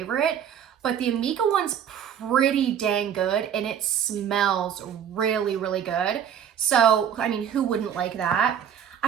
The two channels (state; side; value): quieter; left; 8.8 dB